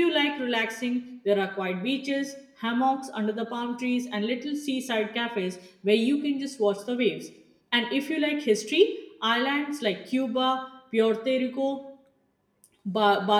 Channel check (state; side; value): identical; both; correlation 1.00